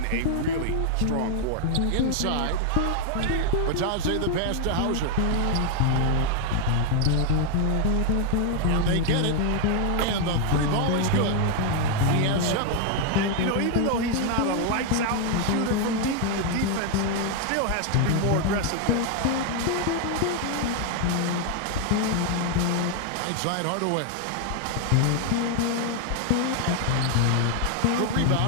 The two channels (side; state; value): both; different; correlation 0.00